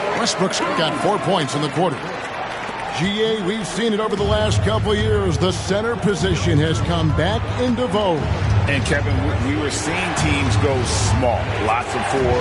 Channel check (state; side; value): identical; both; correlation 1.00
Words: got 4 points in the quarter. GA, we've seen it over the last couple of years. The center position has come back into vogue. And Kevin, we were seeing teams go small. Lots of